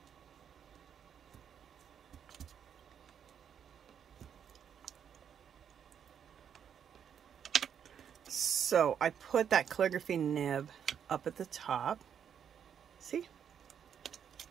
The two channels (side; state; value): left; quieter; 8.2 dB